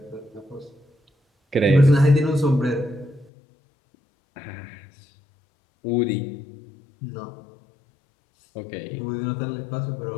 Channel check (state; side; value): drops out; right; at 3.3 s